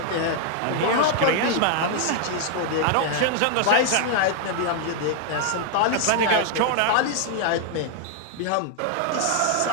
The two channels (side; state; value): both; different; correlation 0.00